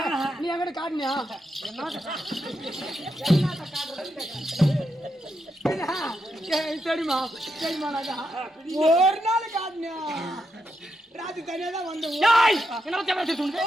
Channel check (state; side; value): normal; both; correlation 0.83